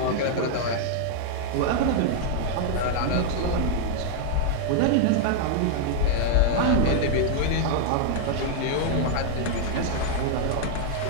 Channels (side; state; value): both; different; correlation 0.00